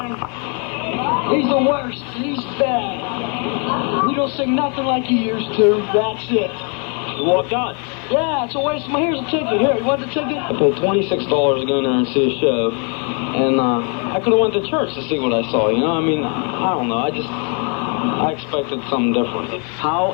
he's the worst. He's bad. He don't sing nothing like he used to. That's it. You walked out? Yeah, it's a waste of my... Here's a ticket. Here, you want the ticket? I paid $26 to go in there and see a show. And I could have went to church to see what I saw, you know? I mean, I don't know. I expected something different. How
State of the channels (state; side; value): quieter; right; 37.8 dB